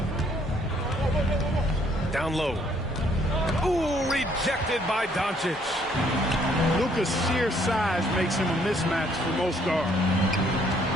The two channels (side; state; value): both; normal; correlation 0.65